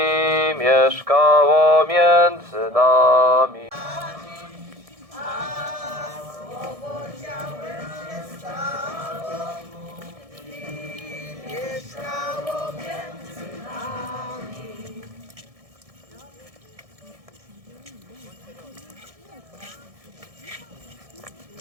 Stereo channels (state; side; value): late; left; 1.7 ms